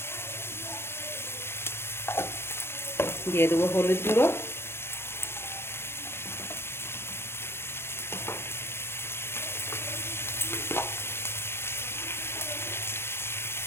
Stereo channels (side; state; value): right; late; 0.12 ms